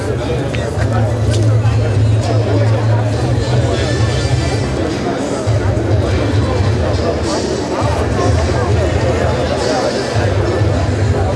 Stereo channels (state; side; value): identical; both; correlation 1.00